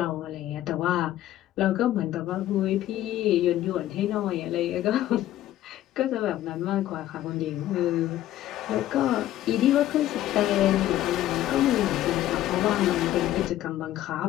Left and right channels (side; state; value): right; quieter; 13.5 dB